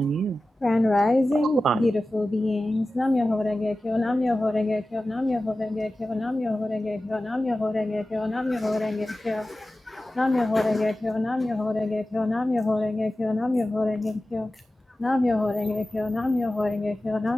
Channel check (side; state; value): both; normal; correlation 0.95